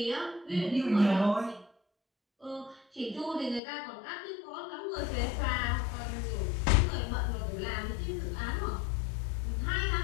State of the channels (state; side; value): drops out; right; at 3.6 s